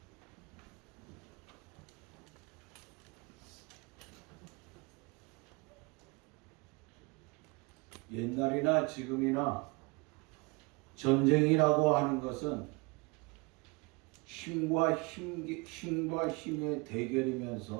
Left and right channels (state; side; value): quieter; left; 28.2 dB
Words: 옛날이나 지금이나 전쟁이라고 하는 것은 힘과 힘의